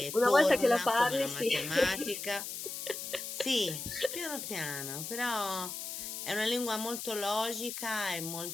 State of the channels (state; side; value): noise; left; hiss, 6 dB below the sound